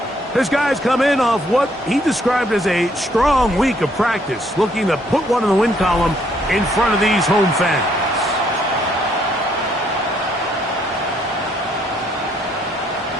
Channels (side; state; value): both; normal; correlation 0.69